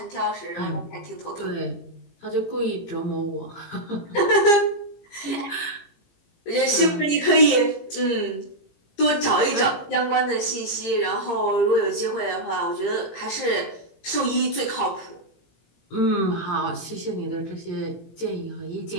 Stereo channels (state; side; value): late; right; 17 ms